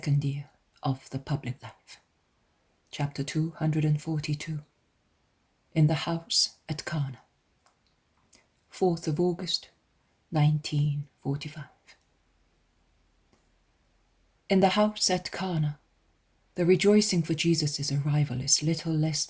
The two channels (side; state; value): both; identical; correlation 1.00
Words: year of the public life. Chapter 242. In the House at Cana. 4th of August, 1945. In the house at Cana, the rejoicing for Jesus' arrival is little less